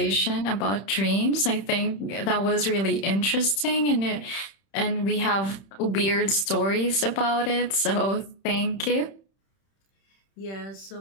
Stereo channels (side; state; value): right; late; 31 ms